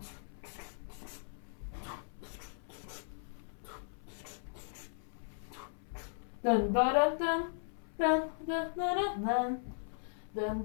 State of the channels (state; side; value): silent; right; 53 dB below the other